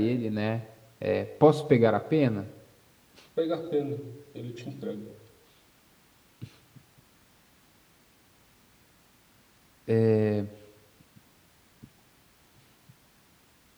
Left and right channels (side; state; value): both; identical; correlation 1.00